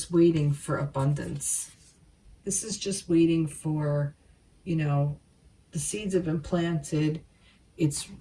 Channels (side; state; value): both; identical; correlation 1.00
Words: waiting for abundance. This is just waiting for, you know, the seeds have been planted, it's